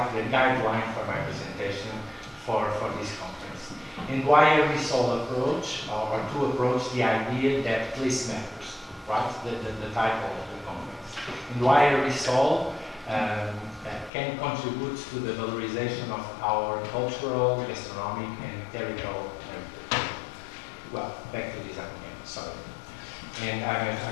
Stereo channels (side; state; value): right; drops out; at 14.1 s